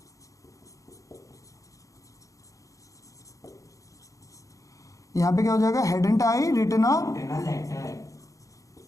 यहाँ पे क्या हो जाएगा, hadn't I written a, written a letter,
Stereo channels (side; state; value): right; late; 0.16 ms